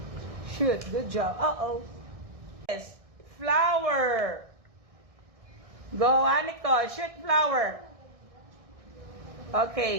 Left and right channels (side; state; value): left; late; 1.6 ms